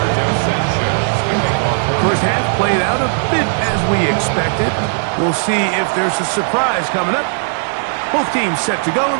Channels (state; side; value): silent; left; 67 dB below the other